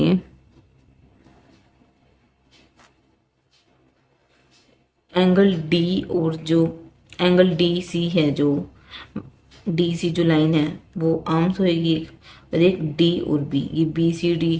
एंगल डी और जो एंगल डी सी है, जो डी सी जो लाइन है वो आर्म्स होएगी और एक डी और बी, ये बी सी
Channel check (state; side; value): identical; both; correlation 1.00